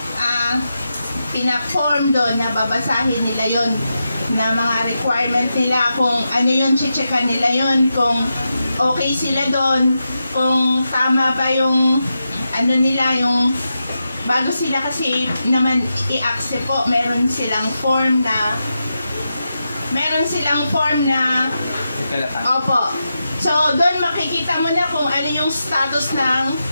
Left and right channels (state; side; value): inverted; both; correlation -0.88